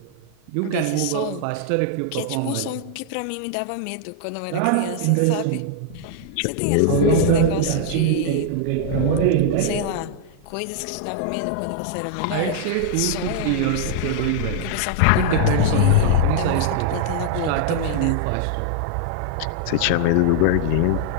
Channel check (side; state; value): both; different; correlation -0.01